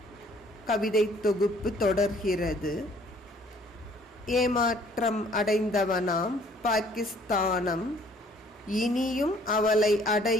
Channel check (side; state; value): both; normal; correlation 0.59